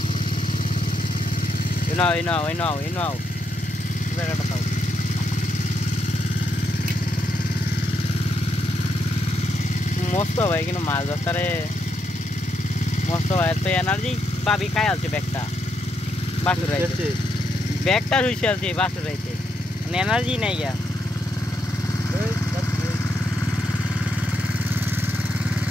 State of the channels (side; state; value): both; normal; correlation 0.79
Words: মস্ত ভাই কিন্তু মাছ ধরতে মস্ত ভাই তো এনার্জি পাবি খাই আছে ব্যাগটা বাসুর রাইছে ব্যাগটা শুইছে আছে বাসুর রাইছে মানে এনার্জি নাই গা